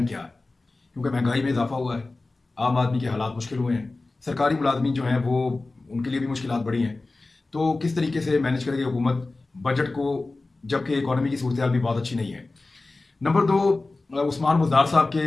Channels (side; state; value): right; quieter; 3.3 dB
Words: क्या है, क्योंकि महंगाई में इजाफा हुआ है, आम आदमी के हालात मुश्किल हुए हैं, सरकारी मुलाजमीन जो हैं वो उनके लिए भी मुश्किलात बढ़ी हैं। तो किस तरीके से मैनेज करेगी हुकूमत बजट को, जबकि इकॉनमी की सूरत हाल भी बहुत अच्छी नहीं है। नंबर 2, उस्मान बुज़दार साहब के